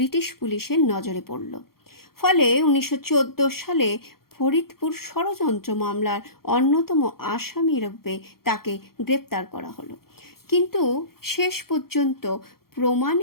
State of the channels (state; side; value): late; right; 0.94 ms